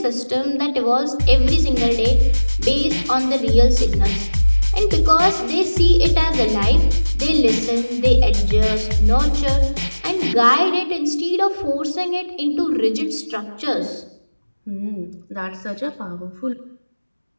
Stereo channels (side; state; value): both; inverted; correlation -1.00